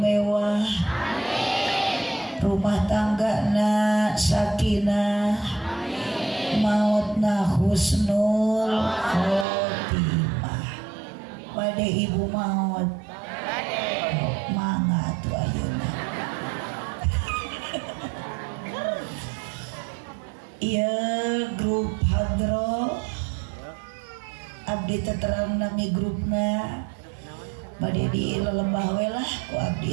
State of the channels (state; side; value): drops out; left; at 9.5 s